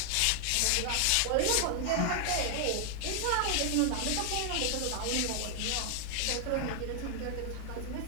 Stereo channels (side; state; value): both; different; correlation 0.00